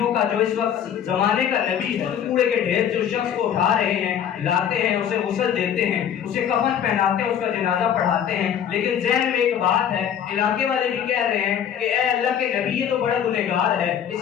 کا جو اس وقت زمانے کا نبی ہے، کوڑے کے ڈھیر سے اس شخص کو اٹھا رہے ہیں، لاتے ہیں، اسے غسل دیتے ہیں، اسے کفن پہناتے ہیں، اس کا جنازہ پڑھاتے ہیں۔ لیکن ذہن میں ایک بات ہے، علاقے والے بھی کہہ رہے ہیں کہ اے اللہ کے نبی یہ تو بڑا گنہگار ہے،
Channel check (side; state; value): right; quieter; 9.1 dB